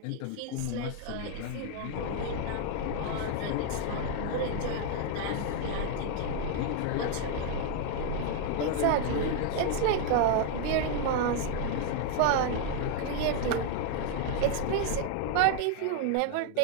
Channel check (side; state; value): both; different; correlation 0.00